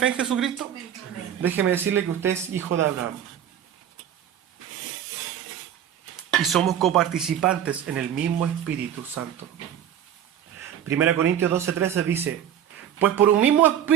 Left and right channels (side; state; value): left; quieter; 9.9 dB